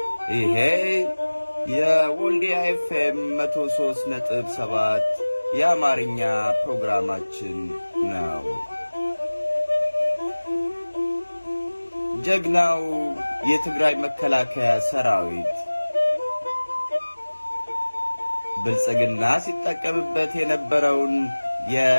ይሄ የወልዲያ ኤፍኤም 103.7 የአማርኛ ፕሮግራማችን ነው። ጀግናው የትግራይ መከላከያ ሰራዊት ብልጽግና ሲጠቀምበት የነበረውን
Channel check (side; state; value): both; inverted; correlation -1.00